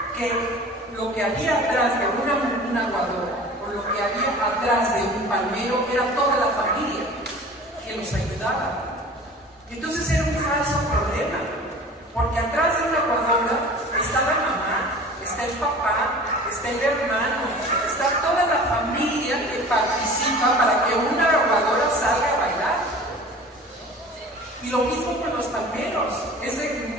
que lo que había atrás de una aguadora o lo que había atrás de un palmero era toda la familia que los ayudaba. Entonces era un falso problema, porque atrás de una aguadora está la mamá, está el papá, está el hermano, está toda la familia que participa para que una aguadora salga a bailar. Y lo mismo con los palmeros, es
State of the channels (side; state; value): both; normal; correlation 0.42